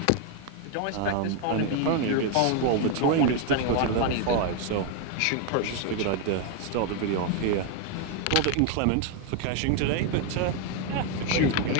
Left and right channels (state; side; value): different; both; correlation 0.01